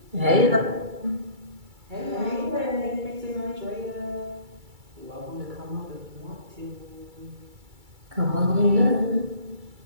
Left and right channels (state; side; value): late; left; 2.3 ms